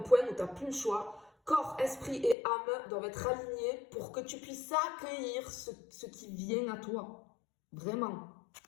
point où tu n'as plus le choix. Corps, esprit et âme doivent être alignés pour que tu puisses accueillir ce qui vient à toi. Vraiment.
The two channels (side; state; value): right; drops out; at 2.4 s